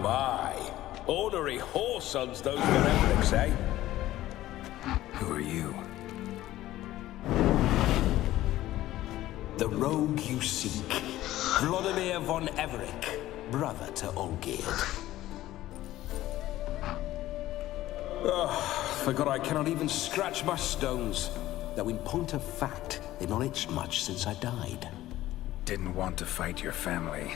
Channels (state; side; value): quieter; right; 15.1 dB